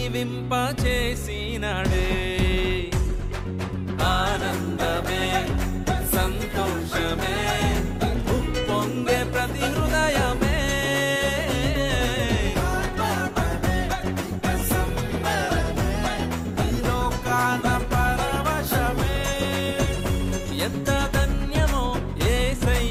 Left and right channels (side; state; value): both; identical; correlation 1.00